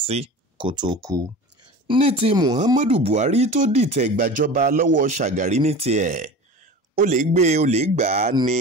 sí kó tó kú. ní ti Muhammadu Buhari tó dìtẹ̀ gbàjọba lọ́wọ́ Shagari ní tiẹ̀ ó lè gbé ó lè gbà á ní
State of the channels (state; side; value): normal; both; correlation 0.35